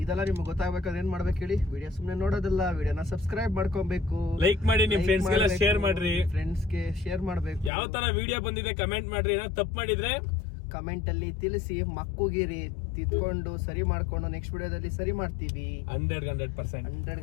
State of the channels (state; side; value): drops out; right; at 7.7 s